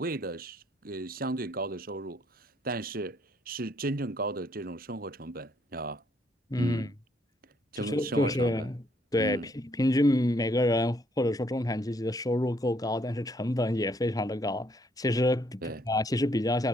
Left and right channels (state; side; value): normal; both; correlation 0.69